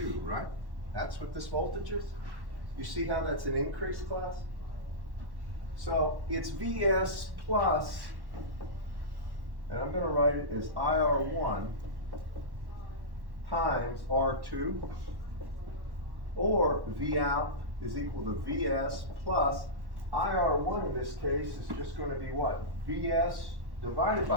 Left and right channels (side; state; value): left; late; 1.1 ms